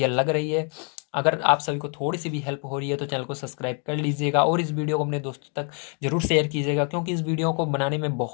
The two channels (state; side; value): quieter; right; 39.1 dB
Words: लग रही है, अगर आप सभी को थोड़ी सी भी हेल्प हो रही है तो चैनल को सब्सक्राइब कर लीजिएगा और इस वीडियो को अपने दोस्तों तक जरूर शेयर कीजिएगा, क्योंकि इस वीडियो को बनाने में